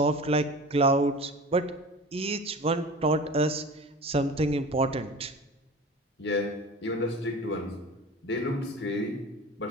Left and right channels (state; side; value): normal; both; correlation 0.36